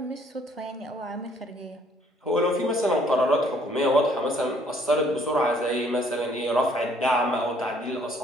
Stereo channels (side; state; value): both; normal; correlation 0.63